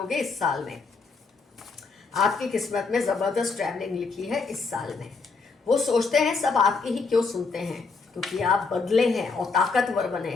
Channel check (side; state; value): right; quieter; 4.4 dB